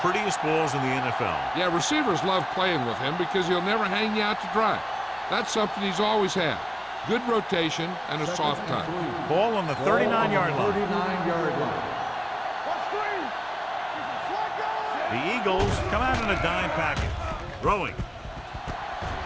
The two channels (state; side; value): identical; both; correlation 1.00